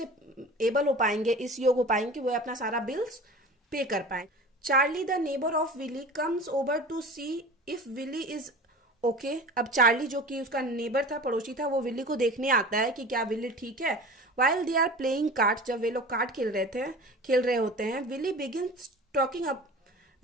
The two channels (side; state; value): both; normal; correlation 0.37